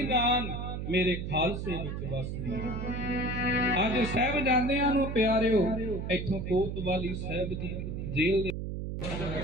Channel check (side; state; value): right; noise; hum, 5 dB below the sound